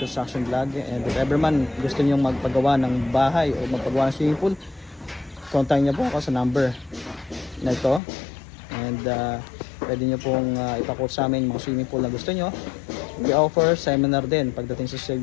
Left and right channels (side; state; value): right; drops out; at 8.0 s